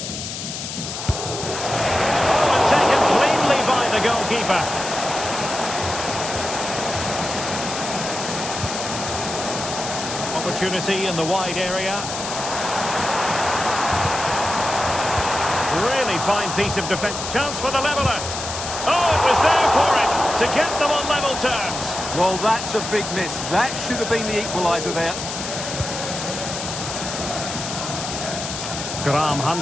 Oh, and taken cleanly by the goalkeeper. Opportunity in the wide area. Really fine piece of defence. Chance for the leveller. Oh, it was there for him to get them on level terms. Well, that's a big miss. That should have been the equaliser there.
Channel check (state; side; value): noise; left; hiss, 6 dB below the sound